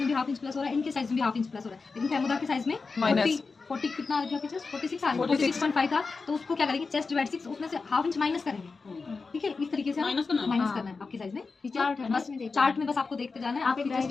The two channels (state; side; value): quieter; right; 4.4 dB